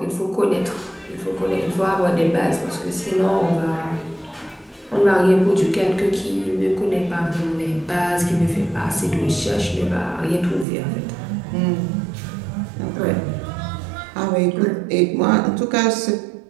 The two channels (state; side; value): drops out; left; at 10.7 s